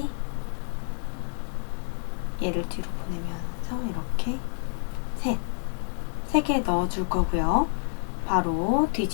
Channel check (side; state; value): right; silent; 58 dB below the other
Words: 얘를 뒤로 보내면서 이렇게 3개 넣어줄 거고요. 바로